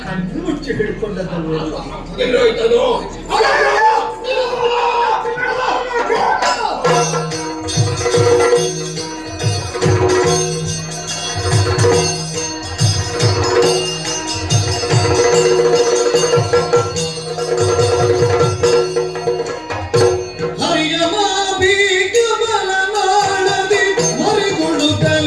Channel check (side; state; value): both; identical; correlation 1.00